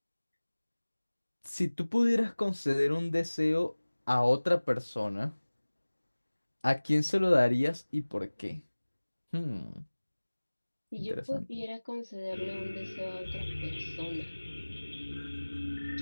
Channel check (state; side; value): inverted; both; correlation -1.00